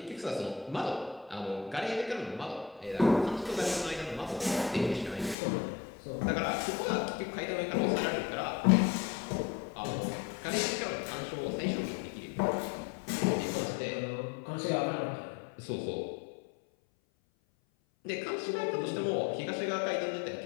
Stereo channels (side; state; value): right; drops out; at 5.4 s